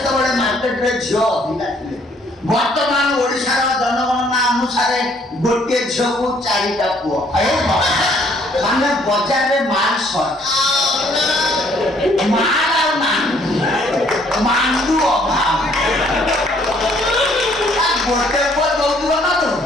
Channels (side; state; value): both; normal; correlation 0.63